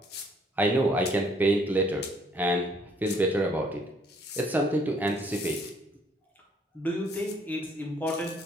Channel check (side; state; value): both; normal; correlation 0.63